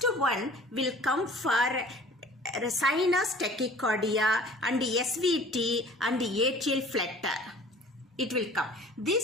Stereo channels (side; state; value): both; normal; correlation 0.48